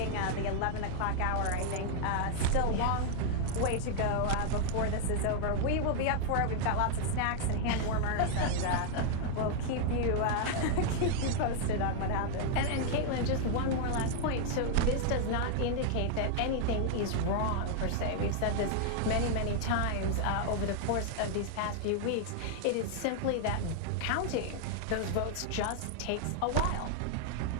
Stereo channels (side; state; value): both; different; correlation 0.00